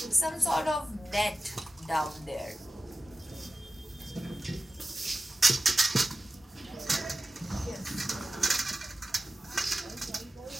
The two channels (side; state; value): both; normal; correlation 0.94